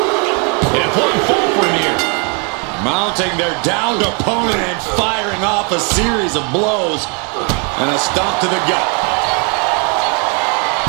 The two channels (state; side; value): quieter; left; 35.7 dB